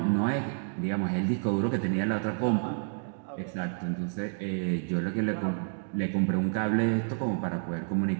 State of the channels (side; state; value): left; silent; digital silence